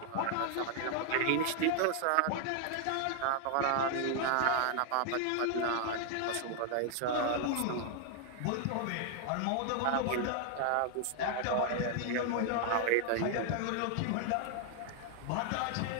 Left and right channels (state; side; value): different; both; correlation 0.00